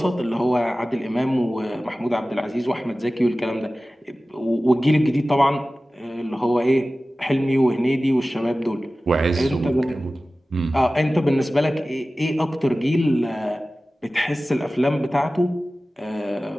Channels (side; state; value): both; normal; correlation 0.96